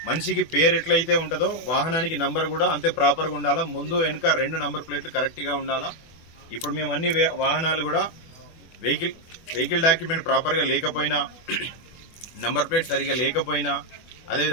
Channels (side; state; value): right; late; 24 ms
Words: మనిషికి పేరు ఎట్లయితే ఉంటుందో వాహనానికి నంబర్ కూడా అంతే ప్రాపర్గా ఉండాలా. ముందు వెనుక 2 నంబర్ ప్లేట్లు కరెక్ట్గా ఉండాలా. ఇప్పుడు మేము అన్ని వాహనాలు కూడా వెహికల్ డాక్యుమెంట్ ప్రాపర్గా లేకపోయినా, నంబర్ ప్లేట్ సరిగా లేకపోయినా,